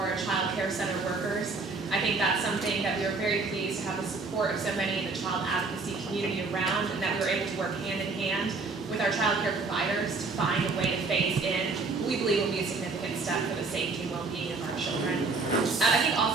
child care center workers. I think that's something that we were very pleased to have the support of so many in the child advocacy community around, and that we were able to work hand in hand with our child care providers to find a way to phase in what we believe will be a significant step for the safety and well-being of our children. I think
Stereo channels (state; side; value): quieter; left; 3.9 dB